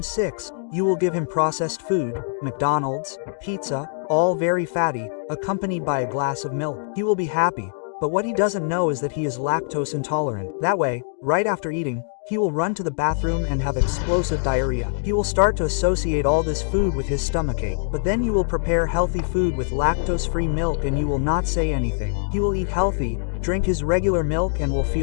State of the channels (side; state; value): right; silent; digital silence